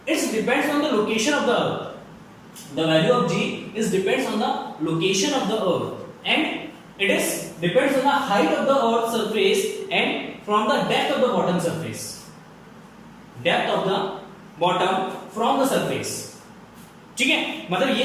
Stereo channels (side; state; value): both; identical; correlation 1.00